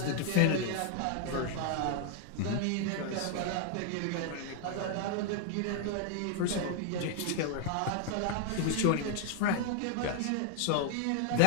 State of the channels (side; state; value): both; different; correlation 0.00